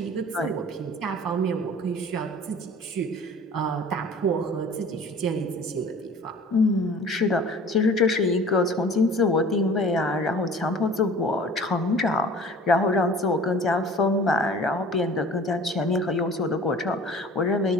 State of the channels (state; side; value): normal; both; correlation 0.45